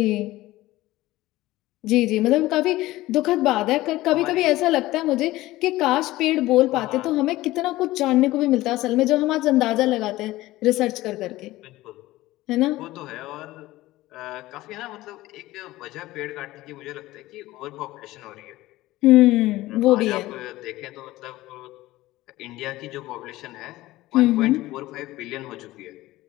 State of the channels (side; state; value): right; quieter; 17.4 dB